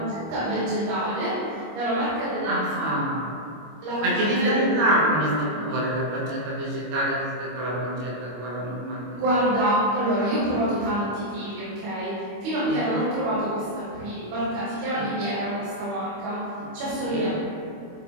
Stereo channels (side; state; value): left; late; 25 ms